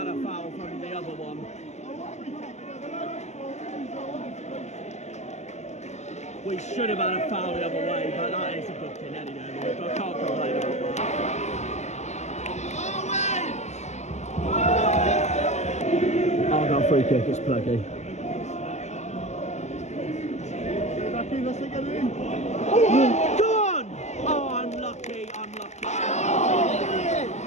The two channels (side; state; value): right; late; 0.33 ms